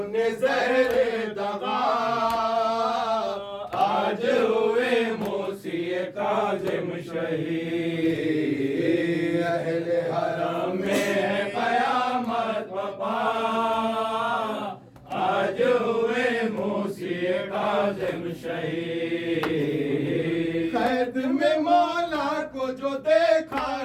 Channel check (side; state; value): both; identical; correlation 1.00